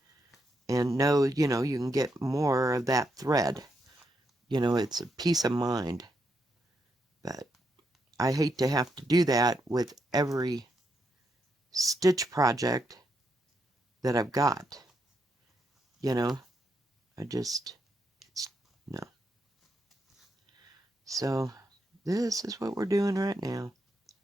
and know, you can get more of that thread. It's a peace of mind. But I hate to have to do that with every stitch project that I've got. No. So this is what we're doing right now.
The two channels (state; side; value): normal; both; correlation 0.81